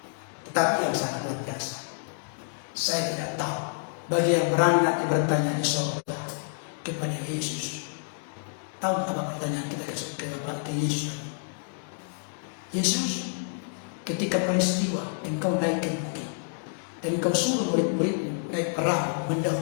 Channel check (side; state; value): right; silent; digital silence